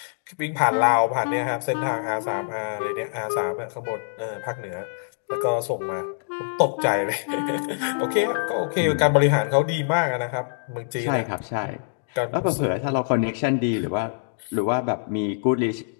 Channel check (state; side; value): silent; right; digital silence